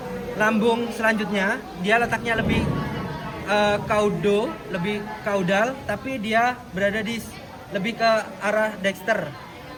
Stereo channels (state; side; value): identical; both; correlation 1.00